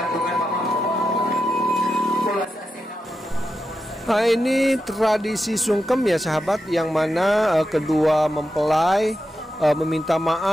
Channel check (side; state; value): both; normal; correlation 0.88